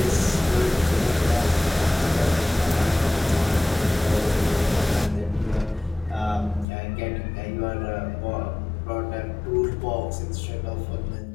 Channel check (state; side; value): drops out; right; at 6.7 s